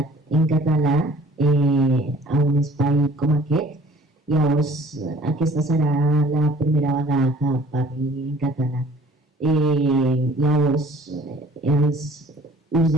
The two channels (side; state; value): both; normal; correlation 0.52